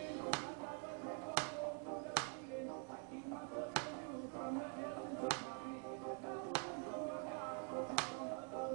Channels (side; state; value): left; quieter; 36.2 dB